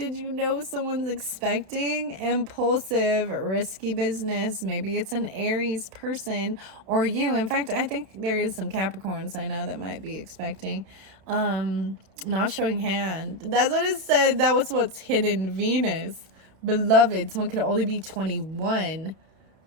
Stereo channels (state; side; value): late; left; 32 ms